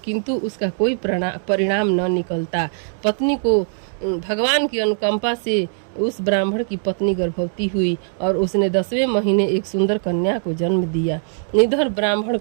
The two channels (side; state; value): left; silent; digital silence